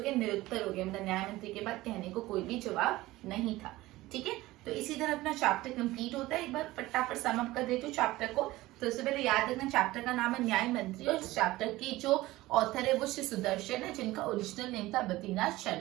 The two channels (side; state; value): left; quieter; 18.1 dB